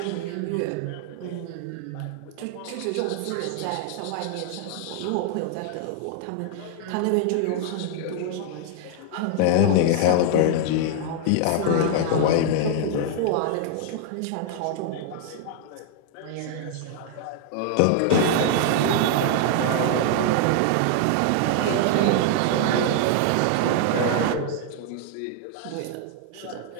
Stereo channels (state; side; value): different; both; correlation 0.00